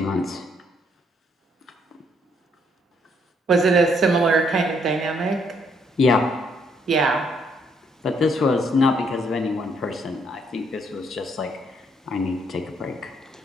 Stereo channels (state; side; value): normal; both; correlation 0.70